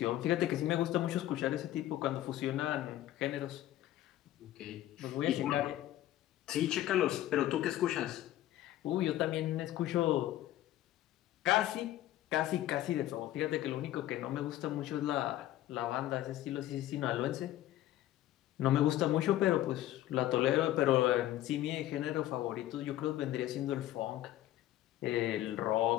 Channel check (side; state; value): right; quieter; 13.9 dB